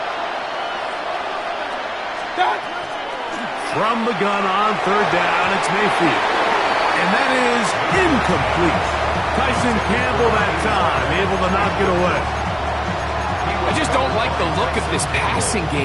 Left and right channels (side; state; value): both; identical; correlation 1.00